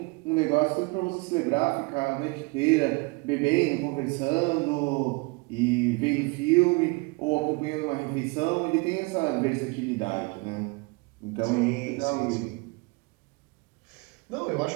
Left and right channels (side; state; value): left; quieter; 27.6 dB